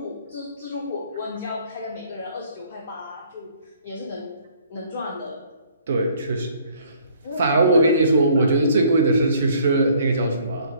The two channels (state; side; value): inverted; both; correlation -0.60